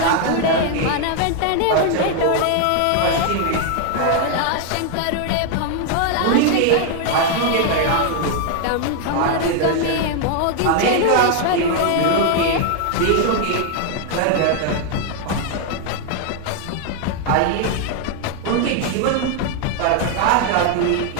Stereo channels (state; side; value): different; both; correlation 0.00